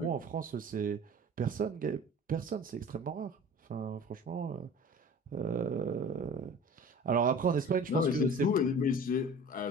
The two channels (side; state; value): both; normal; correlation 0.41